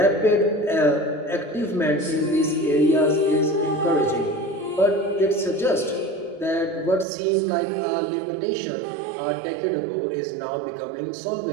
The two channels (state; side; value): drops out; left; at 7.1 s